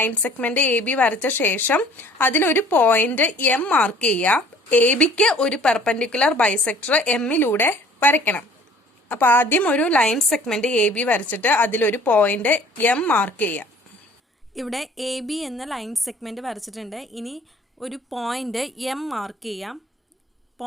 segment A B വരച്ച ശേഷം അതിലൊരു point M mark ചെയ്യുക. A ബിക്ക് ഒരു perpendicular bisector എമ്മിലൂടെ വരയ്ക്കണം. അപ്പോൾ ആദ്യം ഒരു ലൈൻ സെഗ്മെന്റ് എ ബി വരച്ചിട്ട് അതിലൊരു പോയിന്റ് എം മാർക്ക് ചെയ്യുക. ഇവിടെ എ ബി എന്ന ലൈൻ സെഗ്മെന്റ് വരച്ചിട്ടുണ്ട്. ഇനി ഒരു പോയിന്റ് എം മാർക്ക് ചെയ്യാം.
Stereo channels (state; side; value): normal; both; correlation 0.52